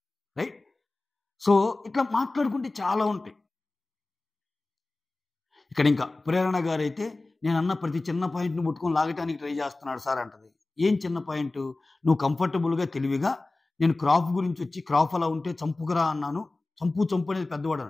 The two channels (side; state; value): right; quieter; 3.1 dB